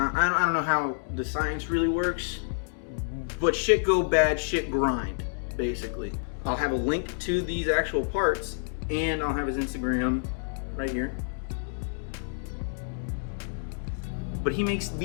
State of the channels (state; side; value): silent; right; digital silence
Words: I don't know how the science really works, but shit go bad, shit grind, basically. I'll have a link to these actual parts, and I'll have his Instagram right here. But he makes